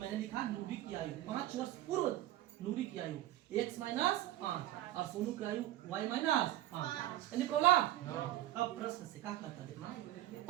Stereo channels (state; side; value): quieter; left; 14.7 dB